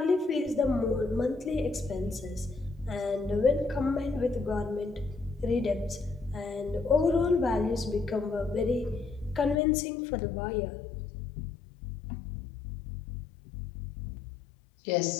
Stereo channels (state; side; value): drops out; right; at 9.6 s